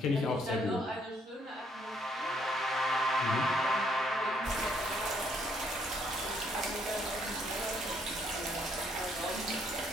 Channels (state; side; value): normal; both; correlation 0.69